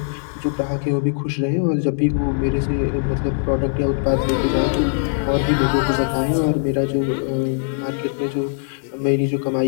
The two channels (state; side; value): silent; right; digital silence